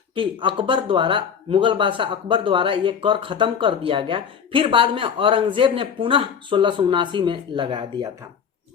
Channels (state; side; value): quieter; right; 7.2 dB